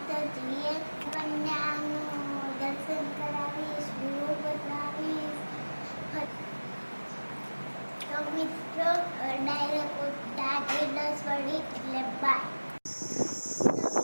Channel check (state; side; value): inverted; both; correlation -1.00